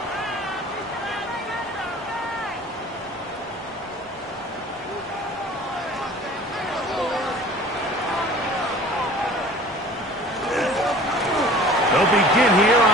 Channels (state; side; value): normal; both; correlation 0.46